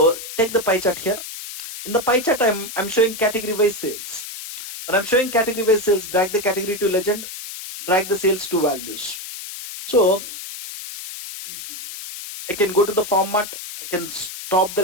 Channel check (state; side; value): noise; left; hiss, 10 dB below the sound